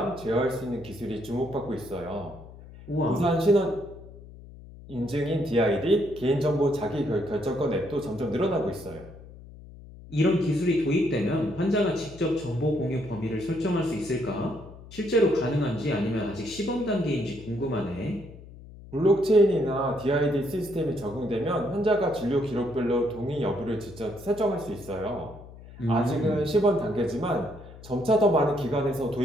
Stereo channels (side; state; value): left; noise; hum, 18 dB below the sound